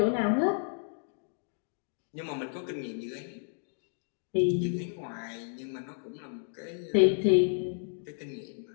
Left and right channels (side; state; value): right; silent; digital silence